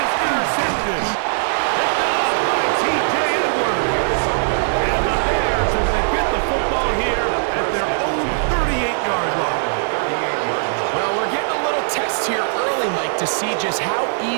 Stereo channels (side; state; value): left; silent; 66 dB below the other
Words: intercepted. Picked off by T.J. Edwards. And the Bears are going to get the football here at their own 38-yard line. Well, we're getting a little test here early, Mike, to see just how